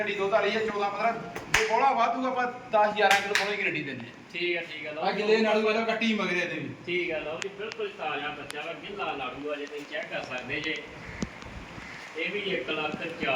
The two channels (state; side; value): identical; both; correlation 1.00